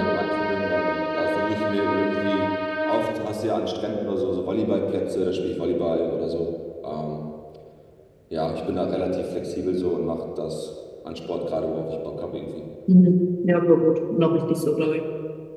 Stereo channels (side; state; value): both; identical; correlation 1.00